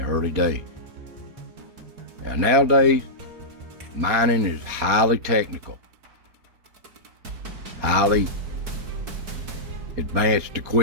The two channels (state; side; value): late; left; 4.3 ms